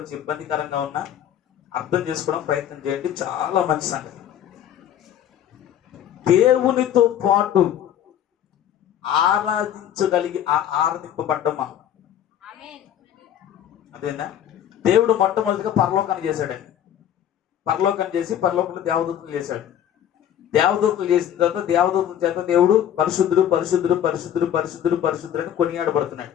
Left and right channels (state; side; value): quieter; right; 10.3 dB